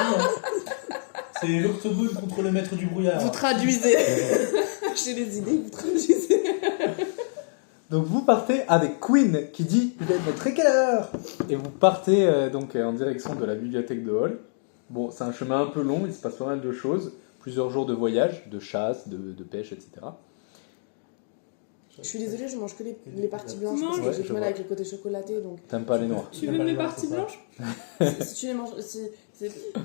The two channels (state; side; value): silent; right; digital silence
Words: C'est l'octogone contre le maître du brouillard. Vous traduisez. J'ai des idées, vous traduisez. Donc vous partez avec Queen qui dit « Vous allez mettre à quelle heure ?» Et vous partez donc en direction de la bibliothèque de Hall. Bon, c'est un chemin un peu long, il se passe pas mal de choses. Plusieurs jours de voyage, de chasse, de pêche, etc. Je suis désolée, je mange que les parties blanches Non, parce que ouais, j'ai je du mal vois. avec le côté chocolaté. Donc, T'aimes pas les noirs. Tu Il y a veux pas mes les noirs, parties c'est ça. blanches? si tu les manges.